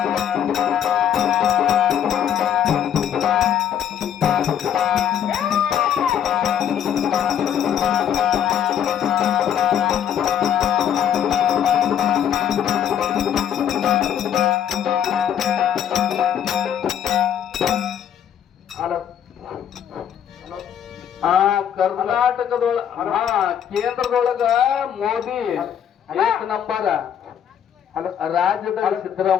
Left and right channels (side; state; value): right; quieter; 9.3 dB